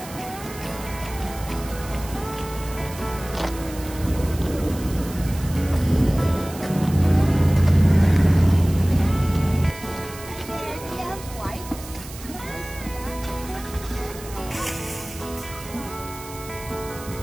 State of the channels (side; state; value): right; noise; hiss, 15 dB below the sound